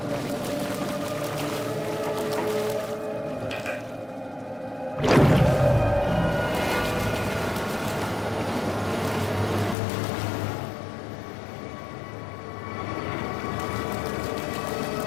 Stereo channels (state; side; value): drops out; right; at 9.8 s